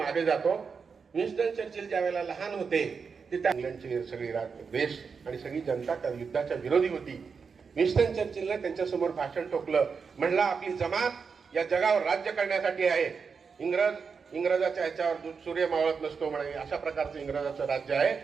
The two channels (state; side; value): quieter; left; 5.6 dB